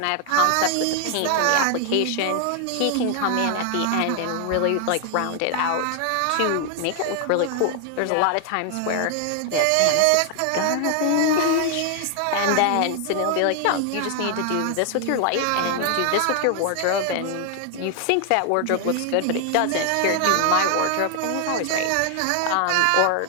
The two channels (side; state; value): both; different; correlation 0.00